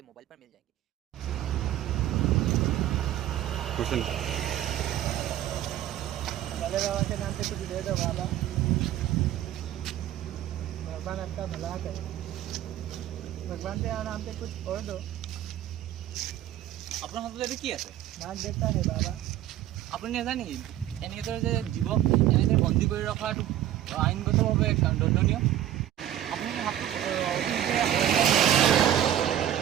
मोबाइल पर मिल जाएंगे। क्वेश्चन भले बाबा के नाम पे कुछ दे दो बाबा, भगवान आपका भला करे। भगवान के नाम पे कुछ और दो। আপোনাৰ হাতত কি আছে? नाक देता है बाबा। আপুনি নাজানে নেকি এনেদৰে যে জীৱক এনেদৰে বন্দী কৰি ৰখাটো আইনগতভাৱে দণ্ডনীয়। আপুনি হাতটো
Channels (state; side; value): quieter; left; 12.1 dB